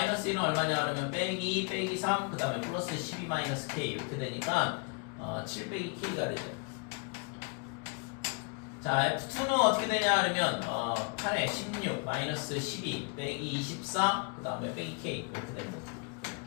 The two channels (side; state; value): right; quieter; 35.0 dB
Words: 1은 얼마냐 그러면 빼기 3 그 다음에 플러스 12 마이너스 k 이렇게 되니까 7 빼기 k가 되죠. 자, F2는 어떻게 되냐 그러면 8에 16 마이너스 12 빼기 24 그 다음에 빼기 K 이렇게 됩니다.